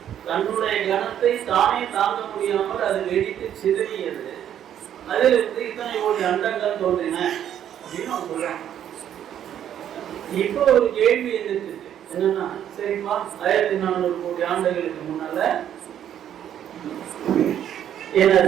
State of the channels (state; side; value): quieter; left; 10.2 dB